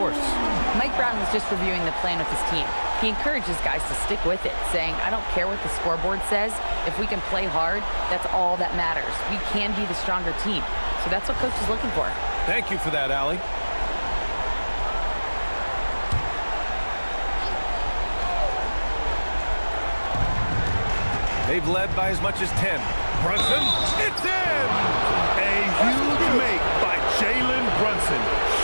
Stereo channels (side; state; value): both; inverted; correlation -1.00